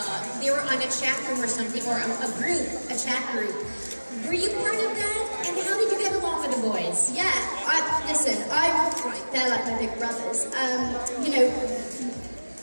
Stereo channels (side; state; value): both; inverted; correlation -1.00